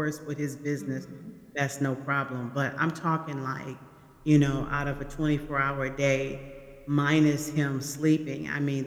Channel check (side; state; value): both; identical; correlation 1.00